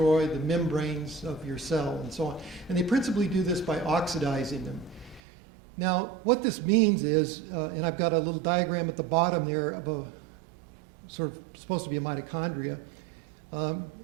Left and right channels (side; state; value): left; drops out; at 5.2 s